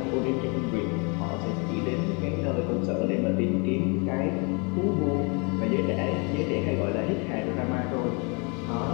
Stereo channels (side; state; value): right; quieter; 32.9 dB